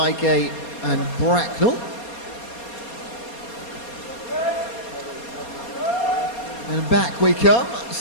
and Bracknell. And back we come.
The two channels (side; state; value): right; late; 4.2 ms